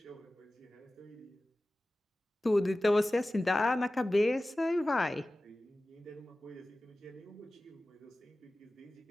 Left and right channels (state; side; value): normal; both; correlation 0.96